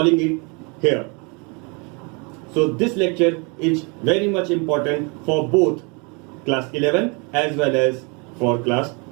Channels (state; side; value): quieter; left; 31.8 dB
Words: it here. So this lecture is very much important for both class 11 as well as for class